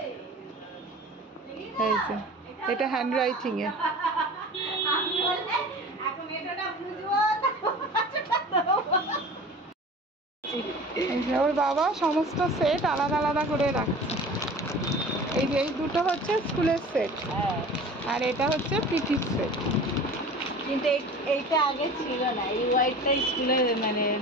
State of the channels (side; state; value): both; normal; correlation 0.40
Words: এই যে এটা হ্যান্ড রাইটিং এ, এই যে ওর বাবা সমস্ত সেট আলাদা আলাদা করে রাখছে। এই যে এই দুটো হচ্ছে স্কুলের সেট, আর এটা হচ্ছে পিটির সেট। কিন্তু এইটা আগে ছিল না, এই হোয়াইটটা স্কুলের মানে